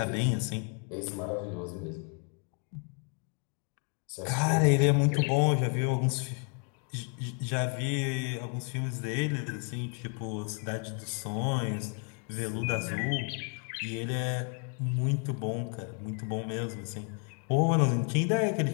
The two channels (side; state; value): right; quieter; 39.1 dB